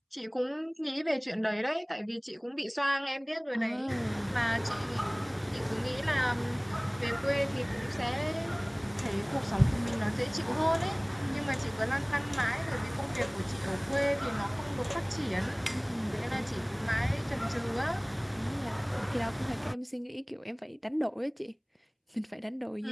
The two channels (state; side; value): identical; both; correlation 1.00